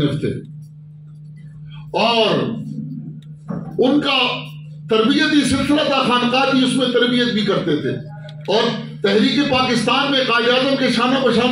تھے، اور ان کا تربیتی سلسلہ تھا، خانقاہ کی، اس میں تربیت بھی کرتے تھے، اور تحریک پاکستان میں قائد اعظم کے شانہ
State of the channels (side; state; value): both; identical; correlation 1.00